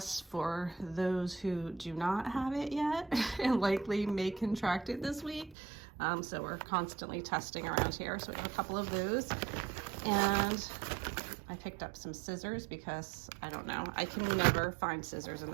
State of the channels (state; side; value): drops out; left; at 5.6 s